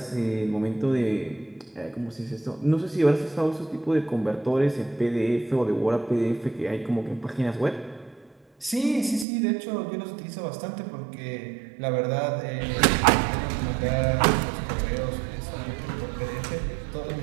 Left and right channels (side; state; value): left; drops out; at 9.2 s